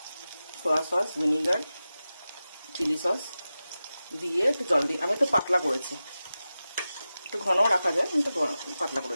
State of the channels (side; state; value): both; inverted; correlation -0.94